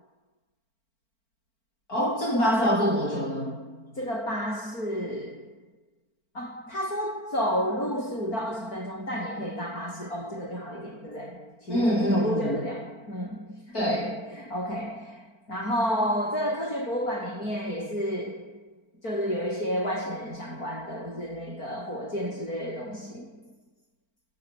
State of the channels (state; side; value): late; right; 4.4 ms